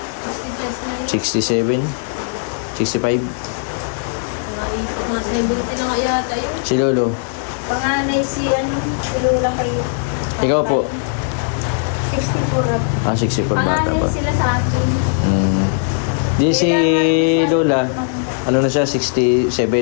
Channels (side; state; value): right; silent; digital silence